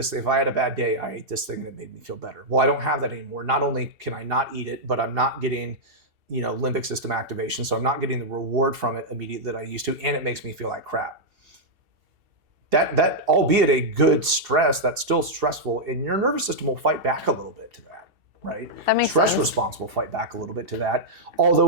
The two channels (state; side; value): late; left; 2.7 ms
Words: If I had a bad day, I ate this thing and it made me feel better. Well, I don't have that anymore. Not only can I not eat it, but I'm not getting, limbic system activation. So I'm not getting the reward from it immediately that I used to, and it makes me feel like crap. That albeit a good stress, that's still stressful, and your nervous system will fight back a little bit to that, right? That makes Stress sense. response will fight back a little bit to that.